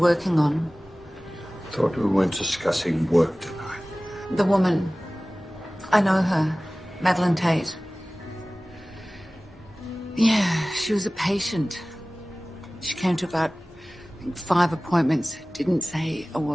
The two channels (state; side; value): normal; both; correlation 0.98